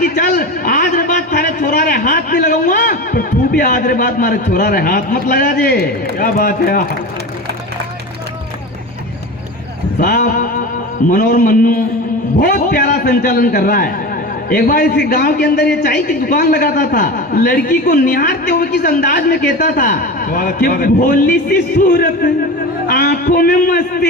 चल आज रे बात थारे छोरा रे हाथ नहीं लगाऊंगा, पर तू भी आज रे बात हमारे छोरा रे हाथ मत लगा जे। क्या बात है साहब मनोहर मन्नू बहुत प्यारा संचालन कर रहा है। एक बार इस गांव के अंदर ये चाय की दुकान लगाता था, लड़की को निहारते हुए किस अंदाज में कहता था कि भोली सी सूरत आंखों में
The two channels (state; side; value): normal; both; correlation 0.28